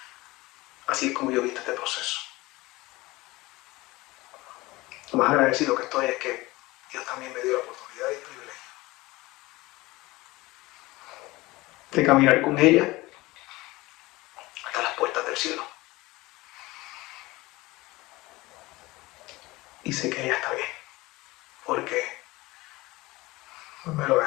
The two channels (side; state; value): right; quieter; 20.6 dB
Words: Así es como yo he visto este proceso. Lo más agradecido que estoy es que Dios también me dio la oportunidad y el privilegio de caminar con ella hasta las puertas del cielo. Y sé que ella está bien, porque me lo ha